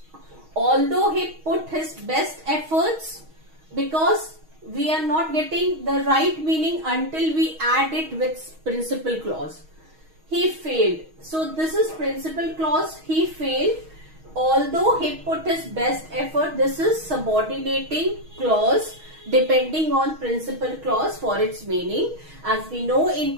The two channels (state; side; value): late; left; 6.3 ms